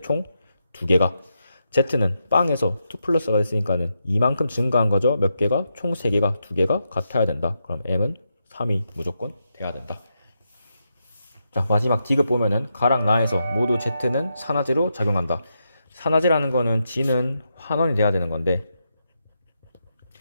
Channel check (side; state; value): both; inverted; correlation -0.84